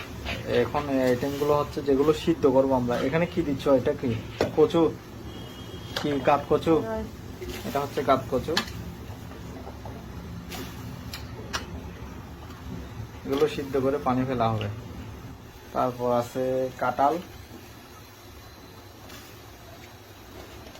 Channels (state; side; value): identical; both; correlation 1.00